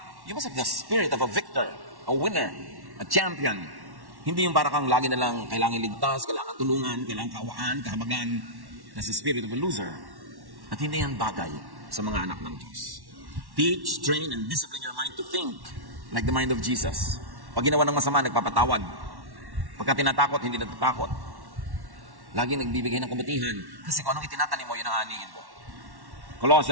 you must have the spirit of a victor, a winner, a champion. Hindi yung para kang lagi na lang kailangan ligtas, kailangan tulungan, kailangan kawaan, kahabagan. Nasa spirit of a loser. At hindi yan bagay sa mga anak ng Diyos. Teach, train, and discipline your mind to think like the mind of Jesus. Pag ginawa ng masama, nagpapatawad. Pagka tinatakot, hindi natatakot. Lagi nagbibigay ng kabutihan. Kasi kung anong itinatanim mo, yun ang aanihin mo.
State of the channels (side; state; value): left; late; 1.1 ms